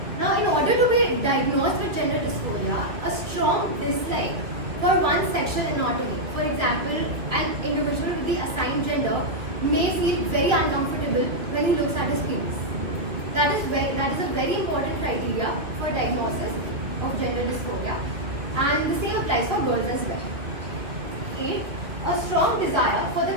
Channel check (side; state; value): left; late; 2.5 ms